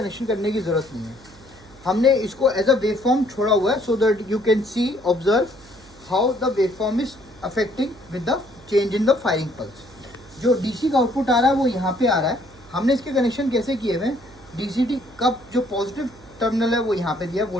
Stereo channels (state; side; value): noise; right; hum, 24 dB below the sound